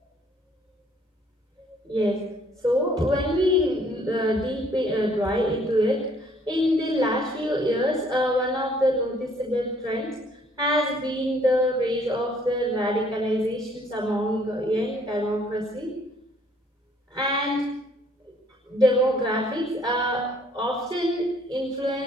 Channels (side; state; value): both; normal; correlation 0.62